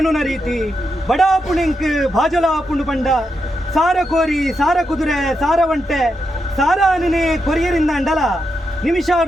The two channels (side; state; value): both; normal; correlation 0.85